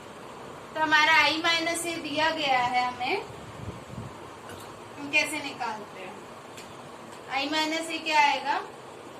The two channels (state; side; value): identical; both; correlation 1.00